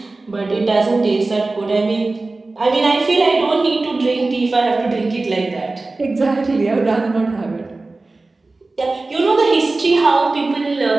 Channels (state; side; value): quieter; left; 3.3 dB